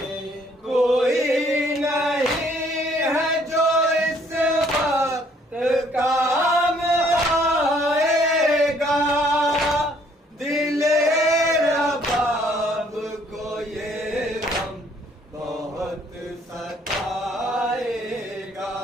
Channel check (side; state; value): both; normal; correlation 0.63